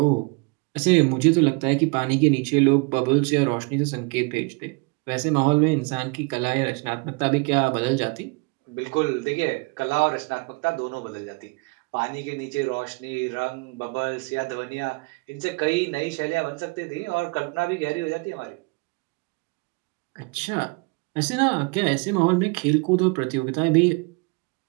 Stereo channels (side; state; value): left; quieter; 29.6 dB